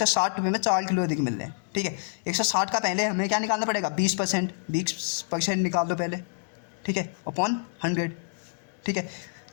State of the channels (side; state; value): right; silent; digital silence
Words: रुपये में 4 किलो अधिक मिल रहे हैं। ठीक है, 160 का पहले हमें क्या निकालना पड़ेगा, 20% निकाल दो पहले। ठीक है, अपॉन 100। ठीक है,